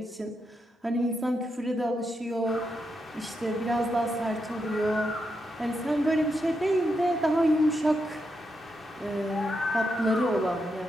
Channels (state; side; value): normal; both; correlation 0.83